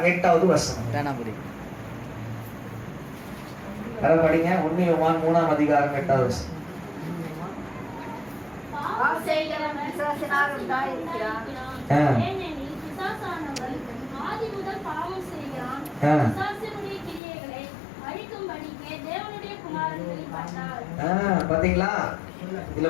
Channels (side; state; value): right; drops out; at 17.2 s